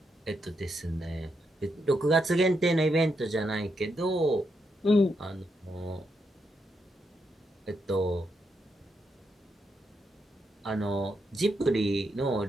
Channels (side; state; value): both; normal; correlation 0.81